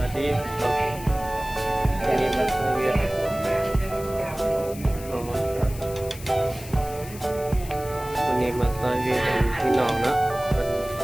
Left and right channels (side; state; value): left; noise; hiss, 16 dB below the sound